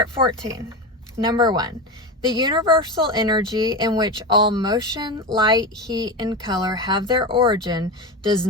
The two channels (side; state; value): both; normal; correlation 0.21